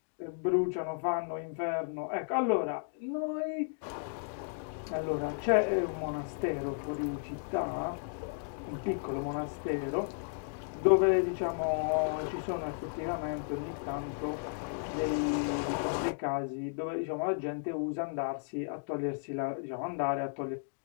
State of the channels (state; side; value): silent; right; digital silence